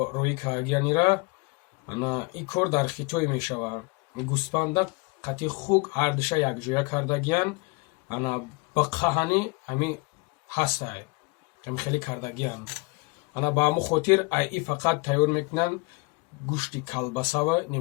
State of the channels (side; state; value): right; quieter; 28.0 dB